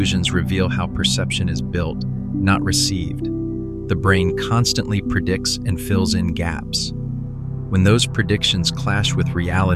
reveal how perception is built, not received. The brain constantly predicts and fills in gaps. When those predictions clash with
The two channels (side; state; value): both; identical; correlation 1.00